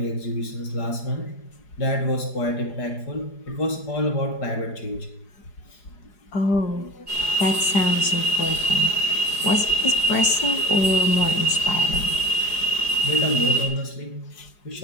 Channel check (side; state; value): right; late; 4.9 ms